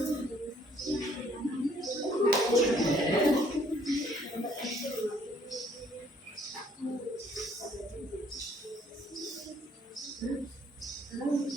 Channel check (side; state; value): both; normal; correlation 0.63